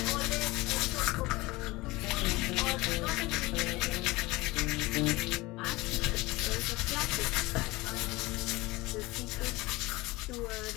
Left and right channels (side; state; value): right; quieter; 21.4 dB